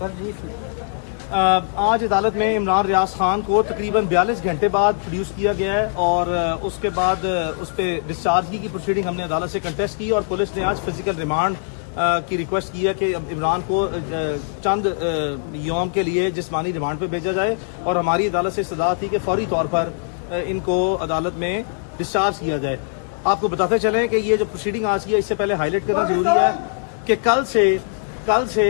آج عدالت میں عمران ریاض خان کو تقریباً 42 گھنٹے بعد پروڈیوس کیا گیا ہے اور اس کے بعد اس پہ ڈسچارجی کی پروسیڈنگ ہم نے عدالت سے کنٹیسٹ کی اور پولیس نے آج فزیکل ریمانڈ کی ریکویسٹ کی ہے کہ عمران کو چند یوم کے لیے جسمانی ریمانڈ پہ بھیجا جائے اور ہماری عدالت سے استدعا تھی کہ فوری طور پر ان کو عدالت میں ڈسچارج کیا جائے۔ آپ کو بتاتے چلیں کہ یہ جو پروسیڈنگ آج کی ہے اس سے پہلے ہائی لائٹ کرنا ضروری ہے کہ کل سے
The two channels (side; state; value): right; silent; digital silence